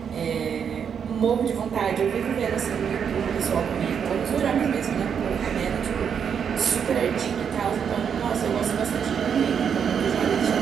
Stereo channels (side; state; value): left; quieter; 7.4 dB